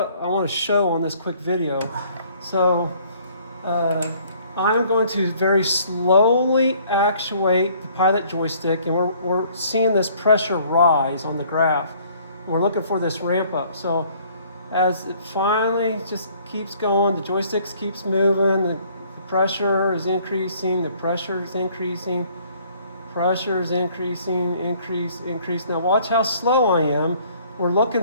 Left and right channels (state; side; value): inverted; both; correlation -0.59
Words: I want to show on this quick video. So I'm going to very slowly actuate the pilot joystick, and we're seeing this pressure rise on the graph. We're looking for this ramp up. So as it finally just keeps going, the joystick keeps moving, the pressure is increasing, the pressure is increasing, pressure is increasing, increase. Now watch how slow I am. We're looking